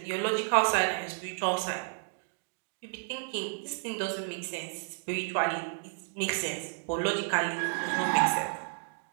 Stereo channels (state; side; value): silent; left; digital silence